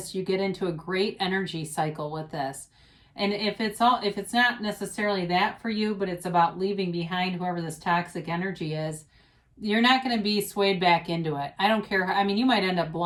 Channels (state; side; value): identical; both; correlation 1.00